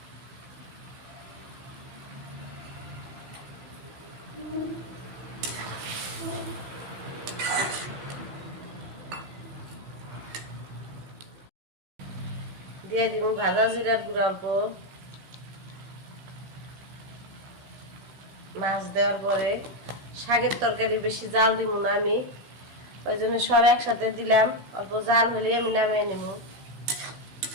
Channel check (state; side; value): late; left; 16 ms